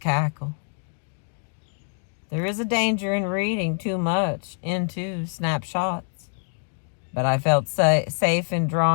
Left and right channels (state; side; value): silent; right; 62 dB below the other